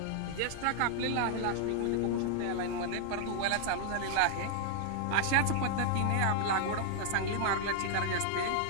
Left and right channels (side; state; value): both; different; correlation 0.00